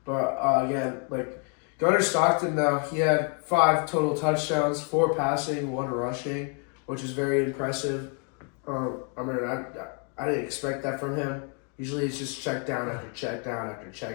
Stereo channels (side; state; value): right; quieter; 39.1 dB